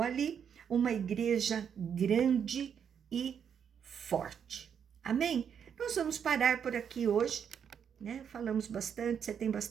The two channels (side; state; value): left; quieter; 7.8 dB